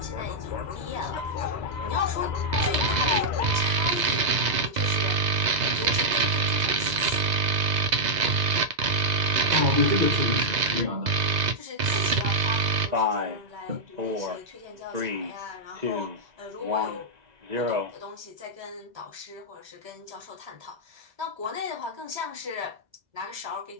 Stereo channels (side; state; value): left; late; 2.0 ms